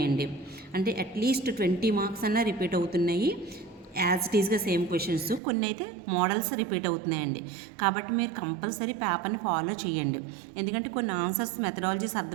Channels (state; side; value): drops out; left; at 5.4 s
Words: అంటే అట్లీస్ట్ 20 మార్క్స్ అన్నా రిపీట్ అవుతున్నాయి. యాజ్ ఇట్ ఈస్గా సేమ్ క్వశ్చన్స్, కొన్ని అయితే మోడల్స్ రిపీట్ అవుతున్నాయండి. కాబట్టి మీరు కంపల్సరీ పేపర్ని ఫాలో చేయండి. ఎందుకంటే కొన్ని ఆన్సర్స్ మెథడాలజీస్